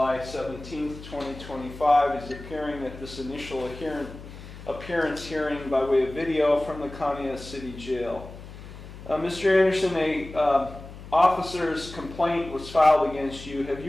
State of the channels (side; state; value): left; noise; hum, 15 dB below the sound